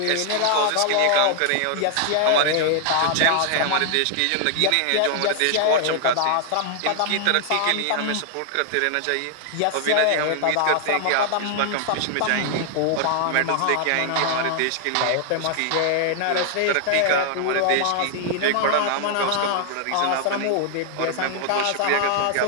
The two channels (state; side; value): different; both; correlation 0.00